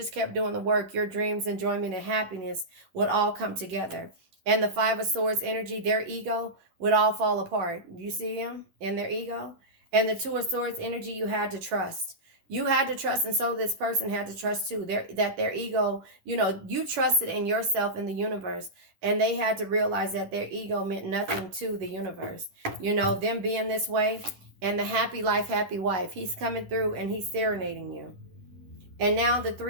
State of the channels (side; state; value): left; late; 11 ms